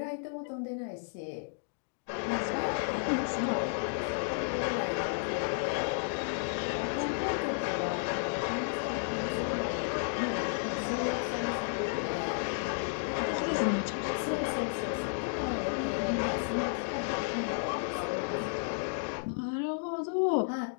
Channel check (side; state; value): right; silent; digital silence